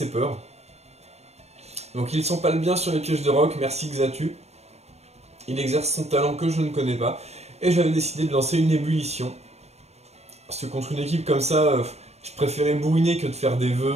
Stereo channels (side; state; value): left; late; 0.31 ms